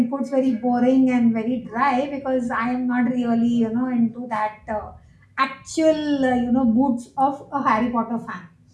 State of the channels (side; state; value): both; identical; correlation 1.00